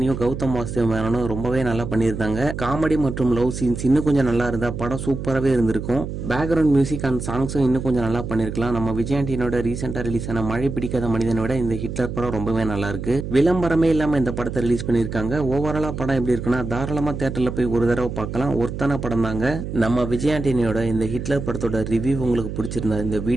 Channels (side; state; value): right; noise; hum, 6 dB below the sound